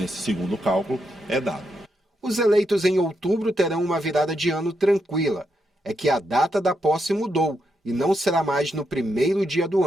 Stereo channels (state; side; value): normal; both; correlation 0.82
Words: segundo cálculo, é dado. Os eleitos em outubro terão uma virada de ano tranquila. É que a data da posse mudou e não será mais no primeiro dia do